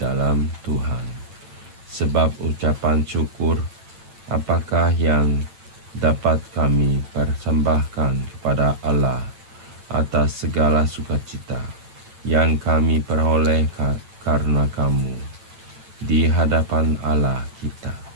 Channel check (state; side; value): late; left; 8.8 ms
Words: Tuhan. Sebab ucapan syukur apakah yang dapat kami persembahkan kepada Allah atas segala sukacita yang kami peroleh karena kamu di hadapan Allah kita.